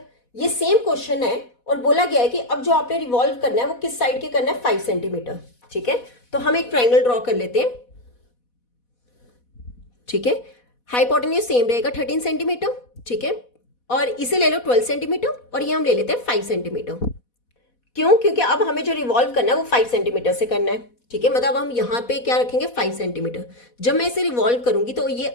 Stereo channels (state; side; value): late; right; 4.1 ms